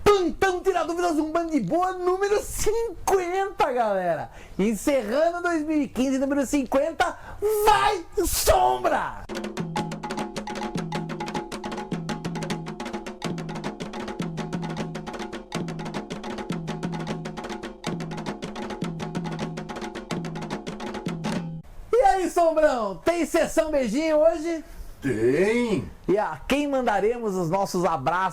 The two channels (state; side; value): identical; both; correlation 1.00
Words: Plantão Tira Dúvidas, um Bando de Boa número 50, galera. Encerrando 2015, número 50, vai Sombra! E aí, Sombrão, tem sessão beijinho hoje? Tem! E a quem mandaremos os nossos